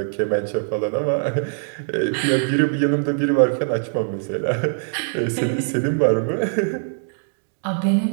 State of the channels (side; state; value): left; silent; 64 dB below the other